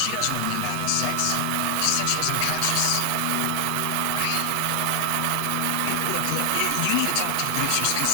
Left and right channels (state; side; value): different; both; correlation 0.00